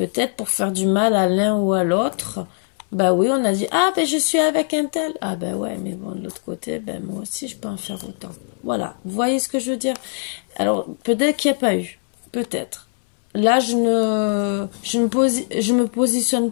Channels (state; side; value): silent; right; 65 dB below the other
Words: pour faire du mal à l'un ou à l'autre. Bah oui, on a dit, ah ben je suis avec un tel. Ah ben ouais, mais bon, de l'autre côté, ben moi aussi je peux en faire autant. Voilà, vous voyez ce que je veux dire? Alors, peut-être qu'il n'y a pas eu, peut-être. Là, je me positionne